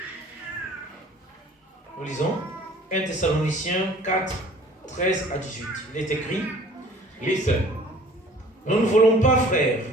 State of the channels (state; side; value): normal; both; correlation 0.50